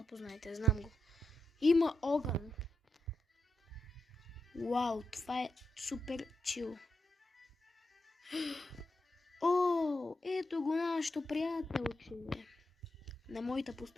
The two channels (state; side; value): normal; both; correlation 0.85